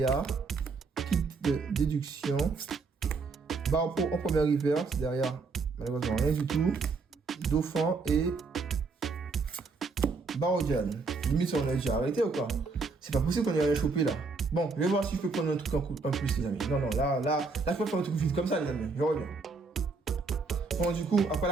Kit de Déduction, Barpo en première reverse, derrière malheureusement rien du tout, Dauphin et Barodian. Limite on a déjà arrêté ou quoi? C'est pas possible qu'on ait rien chopé là. Bon, je vais voir si je peux prendre un truc en plus les amis. Non, là je peux faire un truc vite comme ça les amis, je reviens. Bon du coup, après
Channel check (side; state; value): left; quieter; 4.2 dB